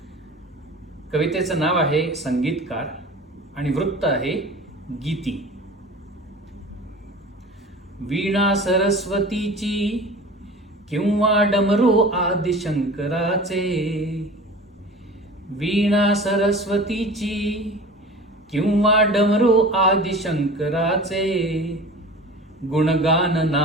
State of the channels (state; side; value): normal; both; correlation 0.39